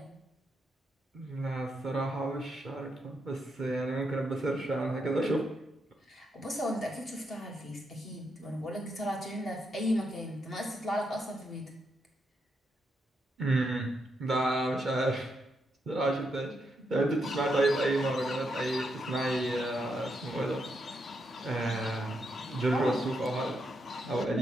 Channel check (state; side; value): normal; both; correlation 0.81